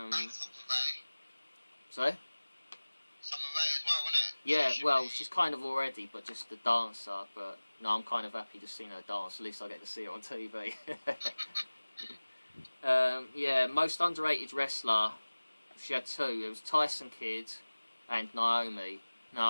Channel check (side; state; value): both; inverted; correlation -1.00